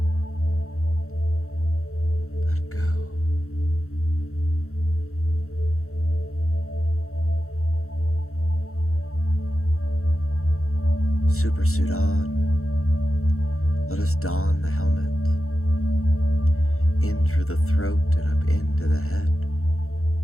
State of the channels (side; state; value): right; late; 0.63 ms